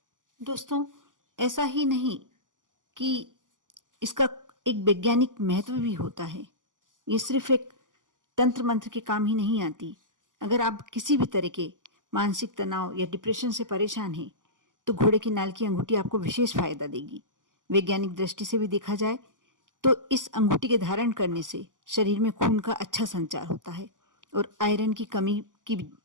दोस्तों, ऐसा ही नहीं कि इसका एक वैज्ञानिक महत्व भी होता है। ये सिर्फ एक तंत्र मंत्र के काम ही नहीं आती। अगर आप किसी भी तरह के मानसिक तनाव या डिप्रेशन से परेशान हैं तो घोड़े की नाल की अंगूठी आपको विशेष फायदा देगी। वैज्ञानिक दृष्टि से भी देखा जाए तो इस अंगूठी के धारण करने से शरीर में खून का अच्छा संचार होता है और आयरन की कमी की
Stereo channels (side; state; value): left; late; 0.88 ms